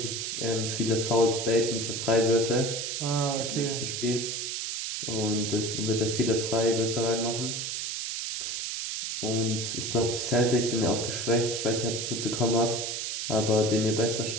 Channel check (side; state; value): right; noise; hiss, 3 dB below the sound